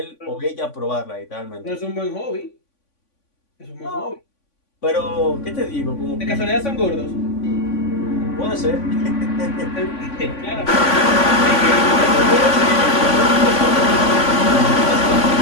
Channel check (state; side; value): late; right; 3.5 ms